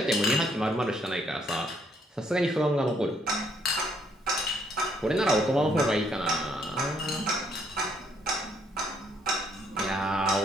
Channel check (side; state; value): both; normal; correlation 0.69